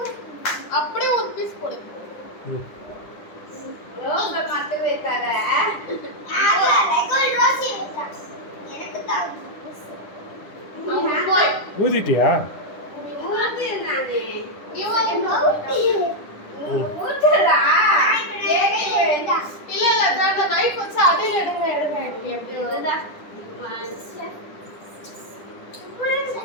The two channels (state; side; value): late; right; 10 ms